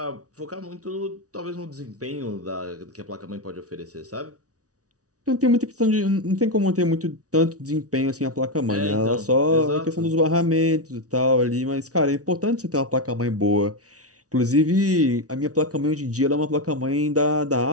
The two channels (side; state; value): left; late; 0.67 ms